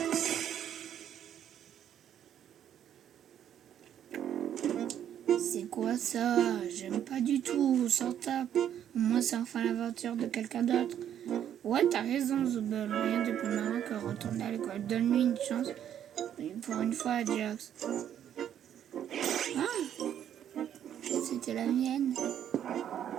C'est quoi ça? J'aime pas du tout, s'en tape. Au moins c'est enfin l'aventure de quelqu'un d'autre. Ouais, t'as raison, Zubel. Rien de plus marrant que retourner à l'école. Donne-lui une chance. Pour une fois, Jax. Ah, c'était la mienne.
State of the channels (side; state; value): left; quieter; 10.0 dB